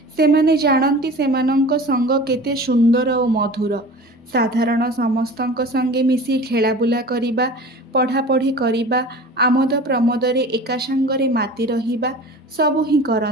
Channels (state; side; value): normal; both; correlation 0.38